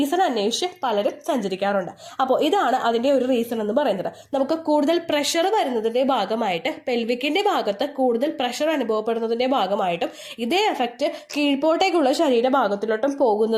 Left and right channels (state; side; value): identical; both; correlation 1.00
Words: അന്വേഷിച്ച് പലരും സഞ്ചരിക്കാറുണ്ട്. അപ്പോൾ ഇതാണ് അതിന്റെ ഒരു റീസൺ എന്ന് പറയുന്നത്. നമുക്ക് കൂടുതൽ പ്രഷർ വരുന്നതിന്റെ ഭാഗമായിട്ട്, പെൽവിക്കിന്റെ ഭാഗത്ത് കൂടുതൽ പ്രഷർ അനുഭവപ്പെടുന്നതിന്റെ ഭാഗമായിട്ടും ഇതേ എഫക്റ്റ് കീഴ്പോട്ടേക്കുള്ള ശരീരഭാഗത്തിലോട്ടും